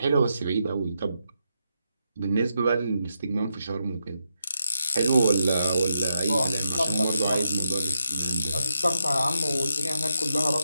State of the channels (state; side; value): inverted; both; correlation -0.84